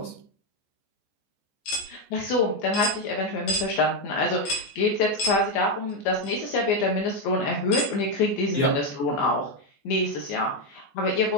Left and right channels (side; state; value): right; late; 14 ms